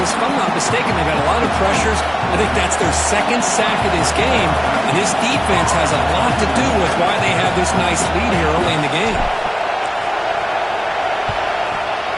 If I'm not mistaken, they've had a lot of pressures. I think that's their 2nd sack of this game. And this defense has a lot to do with why they have this nice lead here early in the game.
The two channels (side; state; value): both; identical; correlation 1.00